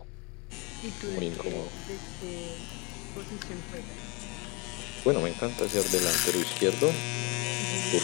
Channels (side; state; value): right; quieter; 28.8 dB